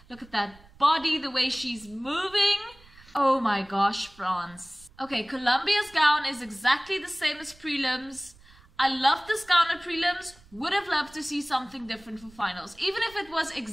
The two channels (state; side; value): noise; right; rumble, 25 dB below the sound